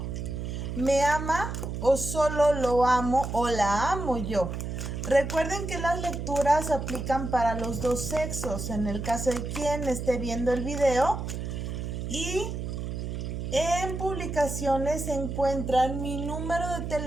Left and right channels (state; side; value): noise; right; hum, 5 dB below the sound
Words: ¿Me ama o solo lo amo o la amo yo? Recuerden que las lecturas aplican para los dos sexos, en el caso de quien esté viendo el video. Y en publicaciones se encuentran mi número de